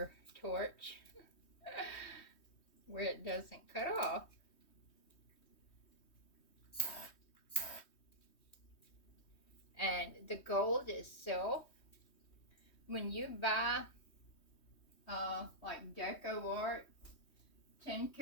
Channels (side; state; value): right; late; 3.2 ms